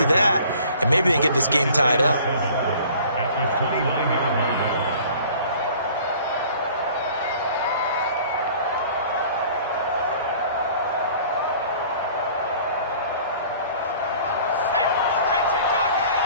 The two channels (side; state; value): both; inverted; correlation -0.50